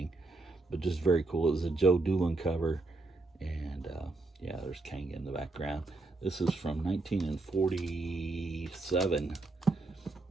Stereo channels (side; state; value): left; quieter; 3.2 dB